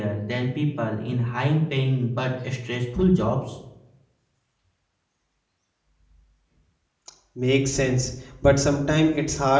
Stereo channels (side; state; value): both; identical; correlation 1.00